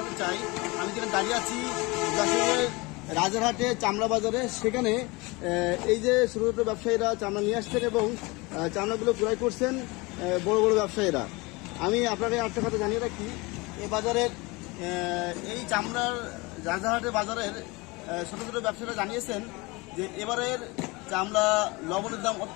চাই, আমি যেখানে দাঁড়িয়ে আছি যশোরের রাজারহাটে চামড়া বাজারে। সেখানে এই যে ছোট ছোট ব্যবসায়ীরা চামড়া নিয়ে আসছেন এবং চামড়াগুলো ক্রয় করছেন বড় বড় ব্যবসায়ীরা। আমি আপনাকে একটা কথা জানিয়ে রাখি, এই বাজারের এই চামড়ার রাজারহাটের বাজারের ছোট ছোট ব্যবসায়ীরা জানিয়েছেন যে এবারের চামড়া লবণের দাম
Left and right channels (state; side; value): quieter; right; 24.7 dB